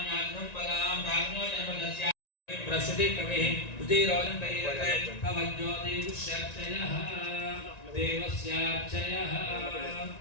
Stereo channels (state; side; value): late; right; 1.9 ms